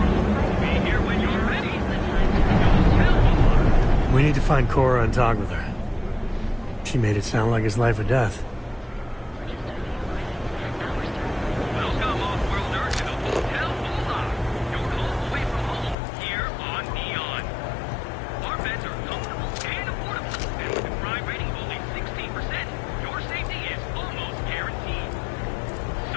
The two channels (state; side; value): drops out; right; at 16.0 s